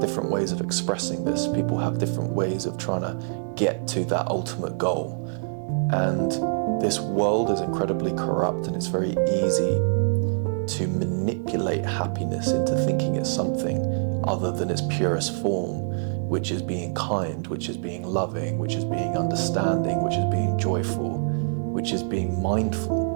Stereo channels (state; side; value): silent; left; 62 dB below the other